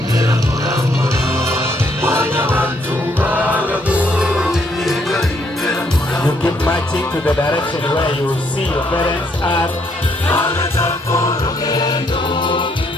You keep marching to the direction where you see your parents are.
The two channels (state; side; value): normal; both; correlation 0.70